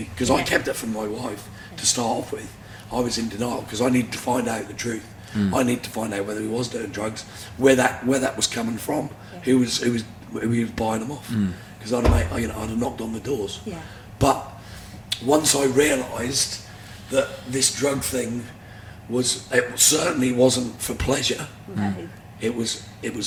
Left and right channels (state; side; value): identical; both; correlation 1.00